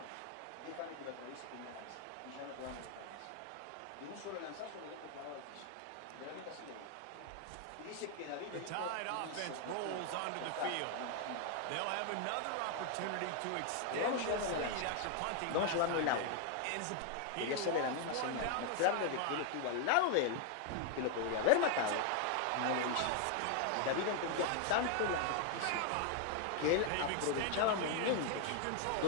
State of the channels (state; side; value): different; both; correlation 0.00